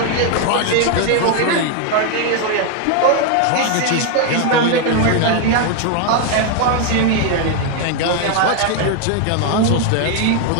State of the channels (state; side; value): different; both; correlation 0.01